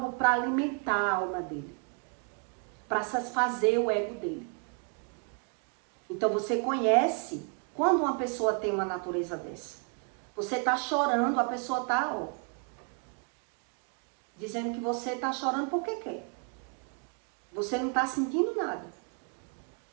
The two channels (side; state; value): left; quieter; 39.4 dB